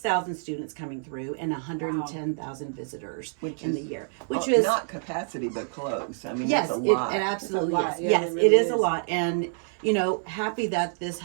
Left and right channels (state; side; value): silent; left; 60 dB below the other